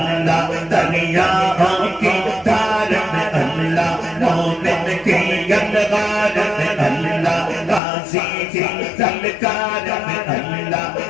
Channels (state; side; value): drops out; right; at 7.8 s